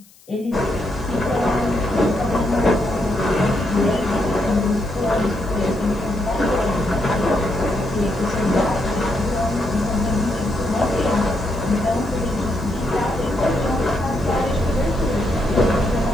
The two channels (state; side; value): noise; left; hiss, 27 dB below the sound